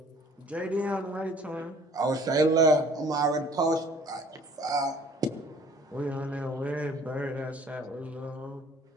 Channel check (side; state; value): both; normal; correlation 0.53